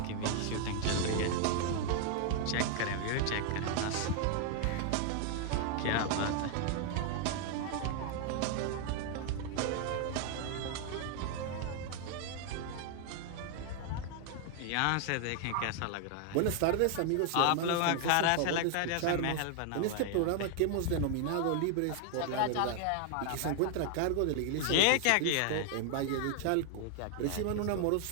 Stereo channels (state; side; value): different; both; correlation 0.00